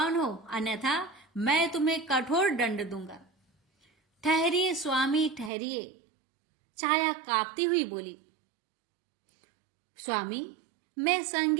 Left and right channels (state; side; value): drops out; left; at 5.5 s